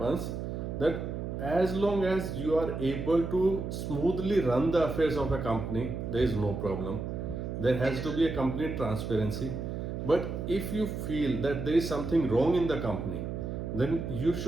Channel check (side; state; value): right; noise; hum, 5 dB below the sound